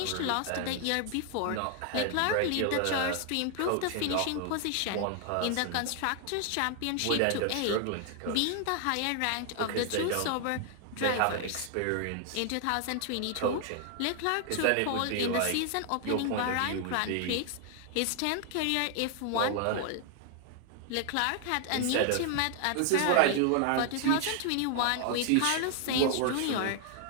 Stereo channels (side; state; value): both; different; correlation 0.00